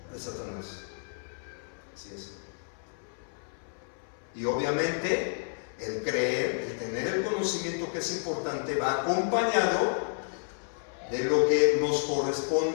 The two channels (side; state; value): right; silent; 57 dB below the other